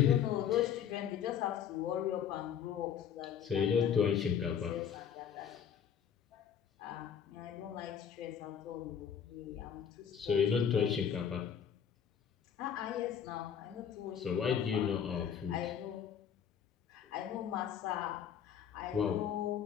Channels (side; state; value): right; quieter; 8.3 dB